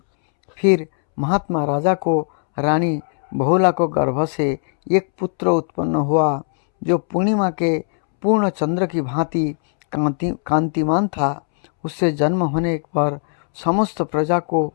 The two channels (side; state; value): right; silent; 66 dB below the other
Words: फिर महात्मा राजा को रानी बहुला को गर्भ से एक पुत्र उत्पन्न हुआ जो पूर्णिमा के पूर्ण चंद्र की भांति कांतिमान था। उससे जन्म होने पर समस्त प्रजा को